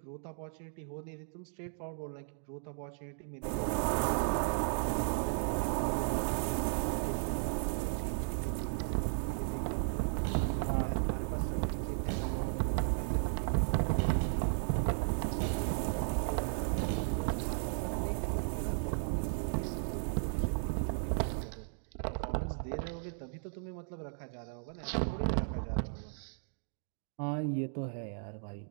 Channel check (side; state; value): left; silent; digital silence